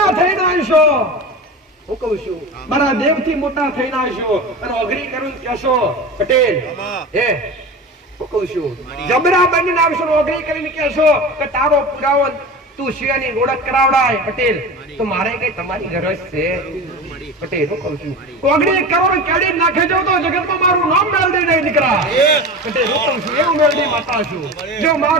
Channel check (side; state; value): both; normal; correlation 0.30